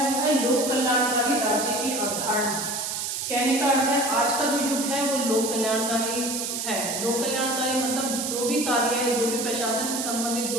वो है लोक कल्याणकारी राज्य की अवधारणा। कहने का अर्थ है आज का जो युग है वो लोक कल्याणकारी है। लोक कल्याणकारी मतलब जो भी कार्य है, जो भी प्रशासन से संबंधित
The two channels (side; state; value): right; noise; hiss, 3 dB below the sound